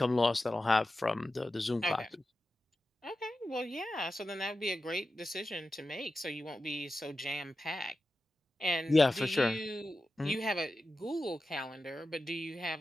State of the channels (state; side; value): normal; both; correlation 0.92